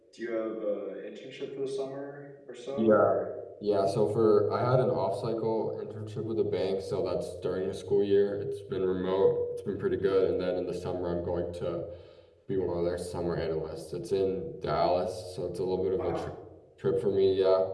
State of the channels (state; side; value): identical; both; correlation 1.00